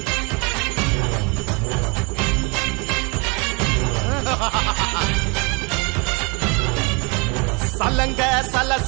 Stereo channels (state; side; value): quieter; left; 30.8 dB